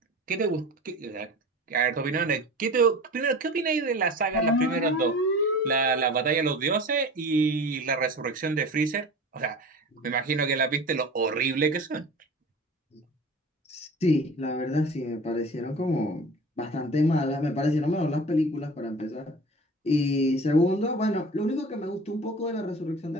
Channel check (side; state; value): both; normal; correlation 0.37